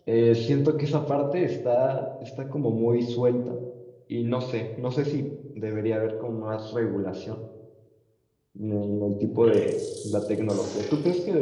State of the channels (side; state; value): both; identical; correlation 1.00